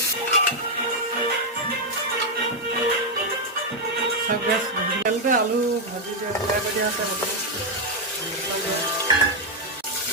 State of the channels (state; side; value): normal; both; correlation 0.01